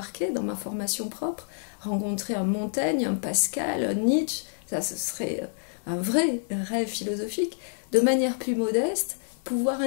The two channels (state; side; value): silent; right; digital silence